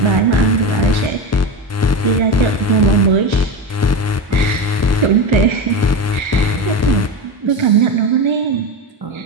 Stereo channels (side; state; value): both; normal; correlation 0.20